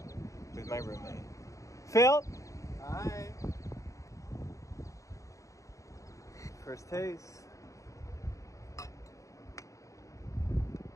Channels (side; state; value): right; late; 0.16 ms